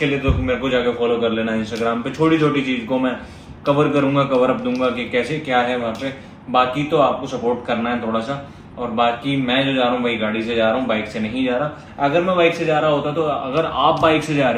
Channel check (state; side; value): identical; both; correlation 1.00